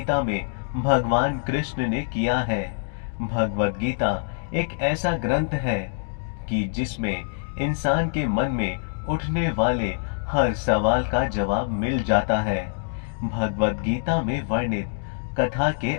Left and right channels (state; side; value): silent; right; digital silence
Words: में भगवान कृष्ण ने किया है। भगवत गीता एक ऐसा ग्रंथ है कि जिसमें इंसान के मन में उठने वाले हर सवाल का जवाब मिल जाता है। भगवत गीता में वर्णित कथा के